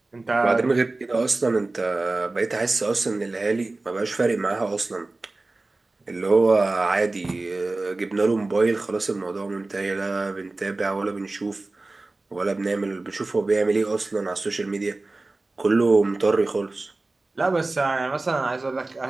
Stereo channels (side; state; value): left; quieter; 3.2 dB